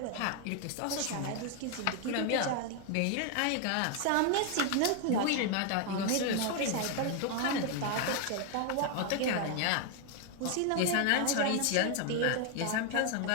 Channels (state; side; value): different; both; correlation 0.01